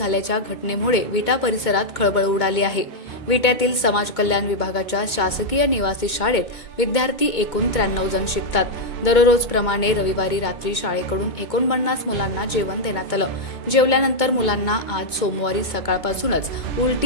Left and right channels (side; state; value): right; late; 2.2 ms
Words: घटनेमुळे विटा परिसरात खळबळ उडाली आहे। विट्यातील समाज कल्याण विभागाच्या शासकीय निवासी शाळेत विद्यार्थी एकूण 93 जण शिकतात। दररोजप्रमाणे रविवारी रात्री शाळेकडून 49 मुलांना जेवण देण्यात आलं। जेवल्यानंतर मुलांना आज सोमवारी सकाळपासूनच